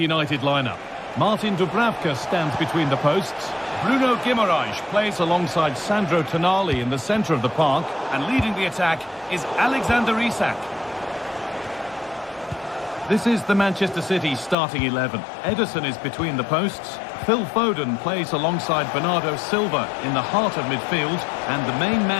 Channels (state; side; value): drops out; right; at 14.6 s